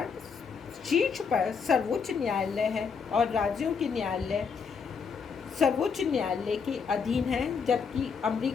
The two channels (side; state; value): right; quieter; 5.8 dB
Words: शीर्ष पर सर्वोच्च न्यायालय है और राज्यों के न्यायालय सर्वोच्च न्यायालय के अधीन है, जबकि